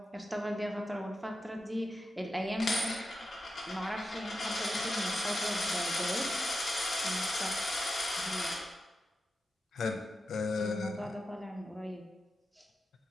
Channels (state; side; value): normal; both; correlation 0.89